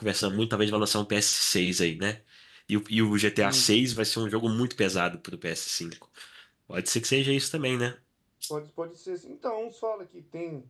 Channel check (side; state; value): both; identical; correlation 1.00